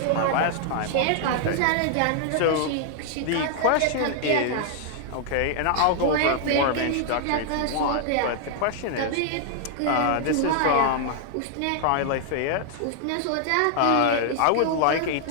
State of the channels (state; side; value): different; both; correlation -0.01